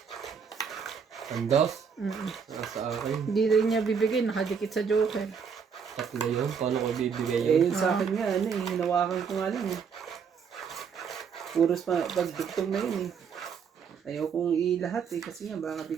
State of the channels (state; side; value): quieter; left; 6.4 dB